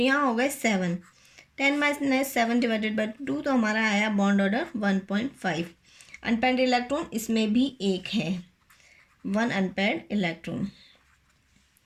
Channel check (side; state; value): both; identical; correlation 1.00